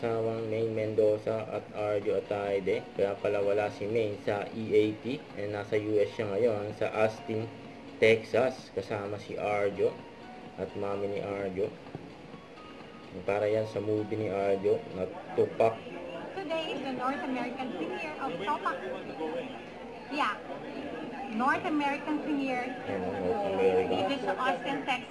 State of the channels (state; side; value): identical; both; correlation 1.00